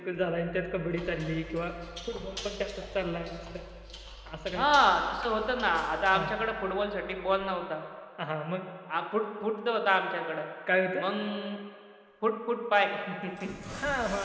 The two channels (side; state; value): both; identical; correlation 1.00